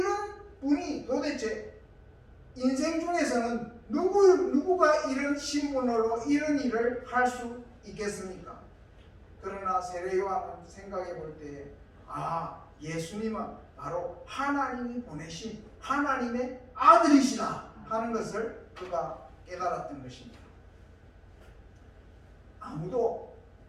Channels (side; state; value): both; identical; correlation 1.00